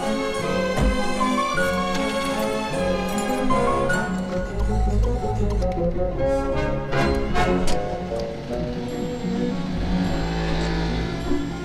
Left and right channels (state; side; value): identical; both; correlation 1.00